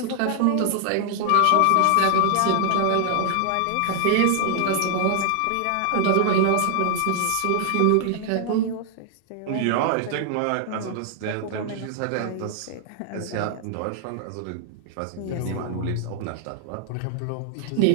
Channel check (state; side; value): different; both; correlation 0.00